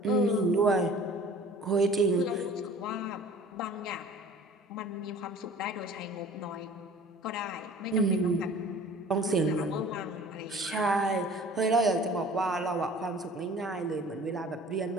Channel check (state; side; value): normal; both; correlation 0.47